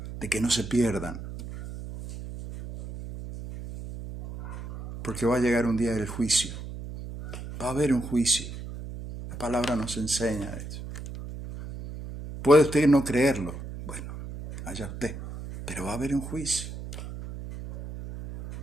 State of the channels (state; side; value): noise; right; hum, 10 dB below the sound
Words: de que no se pierdan. Porque va a llegar un día del juicio. Va a haber un juicio. La palabra nos enseña eso. Puede usted no creerlo. Bueno, allá usted. Pero va a haber un juicio.